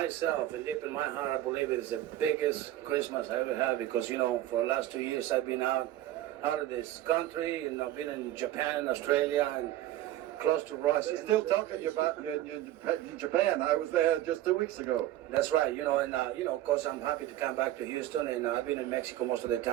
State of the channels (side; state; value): left; quieter; 14.0 dB